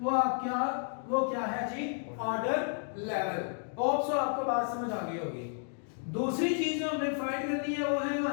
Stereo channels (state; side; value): silent; right; 56 dB below the other